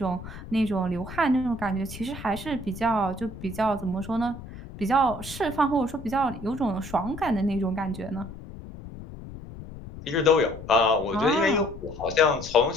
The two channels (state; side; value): noise; left; rumble, 13 dB below the sound